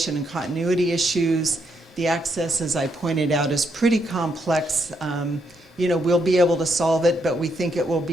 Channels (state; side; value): normal; both; correlation 0.77